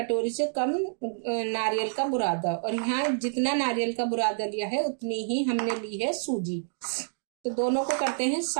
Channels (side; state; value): left; silent; digital silence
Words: से कम नारियल का बुरादा। और यहाँ जितना नारियल का बुरादा लिया है उतनी ही हमने ली है सूजी। तो दोनों को करते हैं